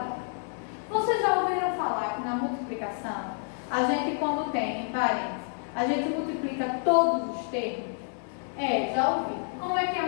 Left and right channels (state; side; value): silent; right; 59 dB below the other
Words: Vocês já ouviram falar que na multiplicação, a gente quando tem em parênteses, a gente multiplica todos os termos? Já ouvi. Como é que é